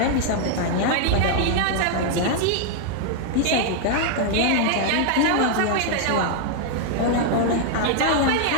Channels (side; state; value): both; different; correlation 0.00